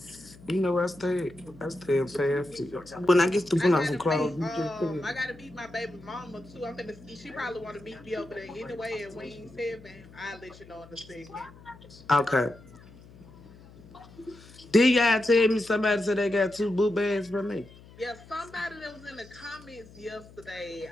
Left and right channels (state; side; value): noise; left; hum, 21 dB below the sound